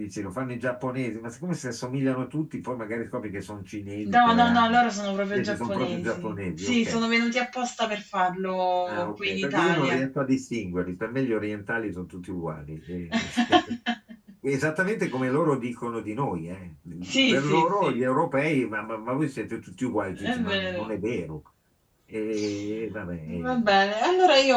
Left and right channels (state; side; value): identical; both; correlation 1.00